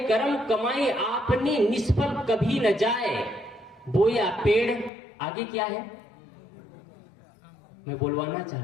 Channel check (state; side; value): drops out; right; at 4.9 s